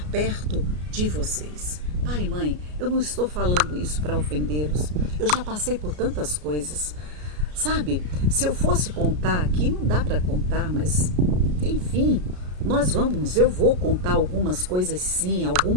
perto de vocês. Pai e mãe, eu não estou falando isso para ofendê-los, eu já passei por tantas coisas. Sabe, se eu fosse contar aqui, não dá para contar, mas enfim, eu vou contar algumas coisas sim,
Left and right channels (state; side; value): late; left; 33 ms